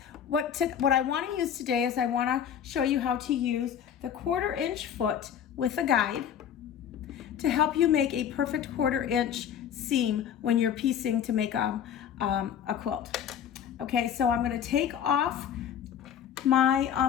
What I want to use today is I want to show you how to use the 1/4 inch foot with a guide to help you make a perfect 1/4 inch seam when you're piecing to make a quilt. Okay, so I'm going to take off my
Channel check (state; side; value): quieter; right; 9.0 dB